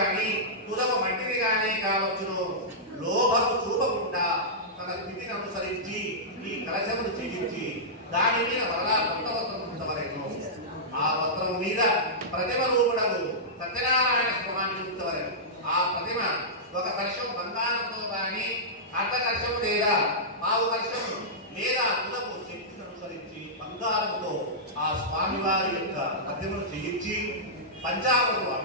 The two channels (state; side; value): normal; both; correlation -0.14